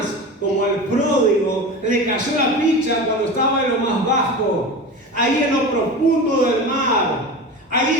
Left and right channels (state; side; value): normal; both; correlation 0.29